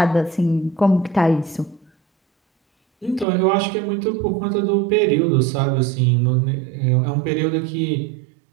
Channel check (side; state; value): left; drops out; at 3.2 s